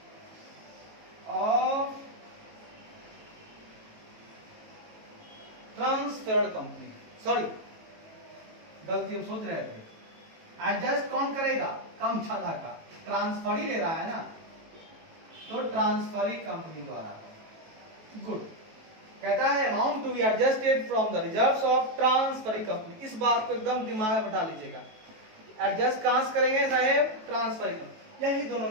sorry गलती हम सोच रहे थे, एडजस्ट कौन करेगा, कम ज्यादा का, ट्रांसफर ही ले रहा है ना, तो ट्रांसफरिंग कंपनी द्वारा। गुड, कहता है amount to be adjusted from the reserves of transferring company. इस बात को एकदम दिमाग में बैठा लीजिएगा, एडजस्ट कहां से करेंगे साहेब, ट्रांसफरिंग कंपनी। यही दोनों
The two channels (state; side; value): late; left; 18 ms